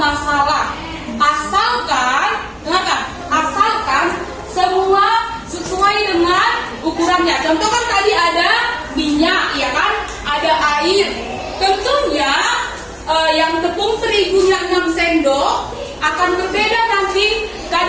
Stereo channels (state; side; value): identical; both; correlation 1.00